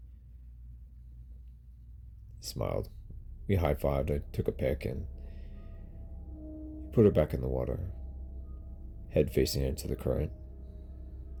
He smiled. We high-fived. I took a pick and he put her back in the water, head facing into the current.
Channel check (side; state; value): both; identical; correlation 1.00